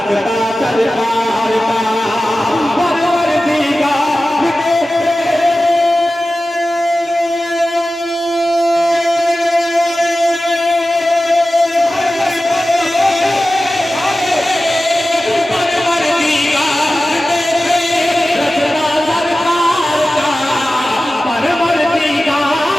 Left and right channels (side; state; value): both; normal; correlation 0.95